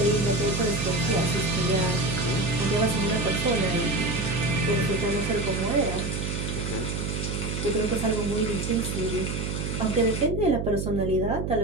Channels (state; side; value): noise; right; hum, 3 dB below the sound